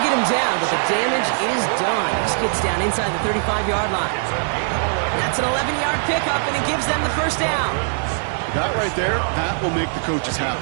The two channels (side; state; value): left; silent; digital silence